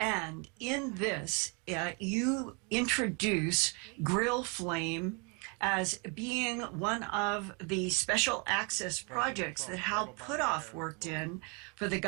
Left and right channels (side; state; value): left; quieter; 33.1 dB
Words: in this, you introduce Grill Flame as being one of the special access projects that Hal Puthoff worked in for the